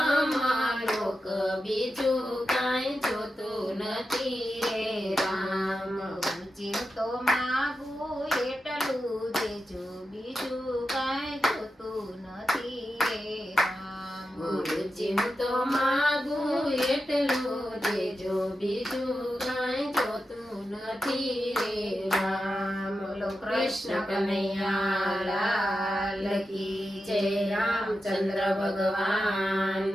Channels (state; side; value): normal; both; correlation 0.90